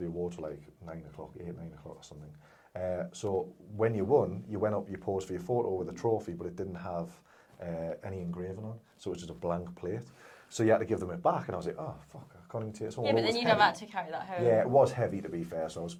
like 9 o'clock or something. So when you won, you went up, you posed for your photo with a trophy, but it didn't have any engraving on, so it was just a blank plate. So you had to give them it back, and I was like, oh, fuck, I can't even take it. Yeah, but then you'd have had to carry that home. Yeah, it was heavy, to be fair, so I was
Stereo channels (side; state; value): both; identical; correlation 1.00